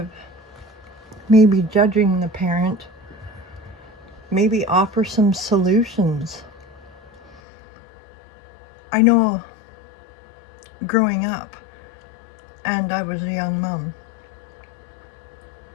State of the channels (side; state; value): right; drops out; at 7.4 s